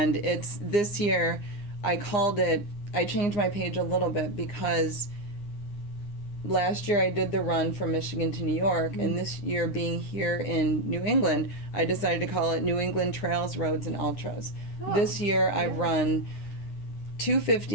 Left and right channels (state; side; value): late; right; 9.8 ms